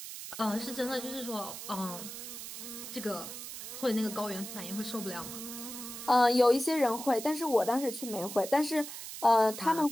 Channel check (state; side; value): noise; right; hiss, 9 dB below the sound